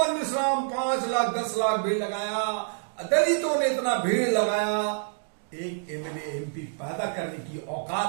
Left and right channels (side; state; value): left; silent; digital silence